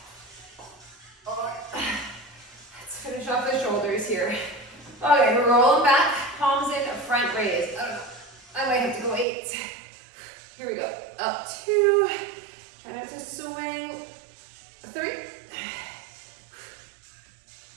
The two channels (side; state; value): left; drops out; at 9.2 s